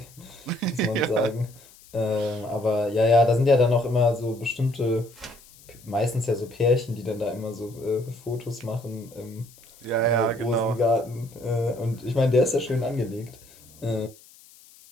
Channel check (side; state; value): left; noise; hiss, 24 dB below the sound